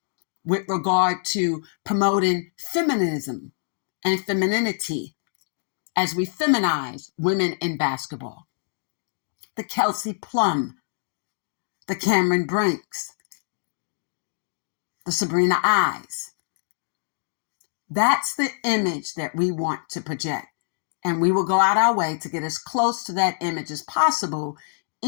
with regard to promoting feminism and femininity as we feminize women in basketball. The Kelsey Plum, the Cameron Brinks, the Sabrina Eyes. That's the image that we want to project. And we will go out our way to get as close to that image as possible,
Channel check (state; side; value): silent; right; digital silence